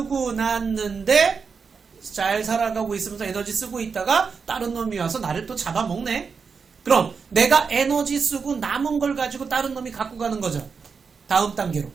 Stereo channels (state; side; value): quieter; left; 5.5 dB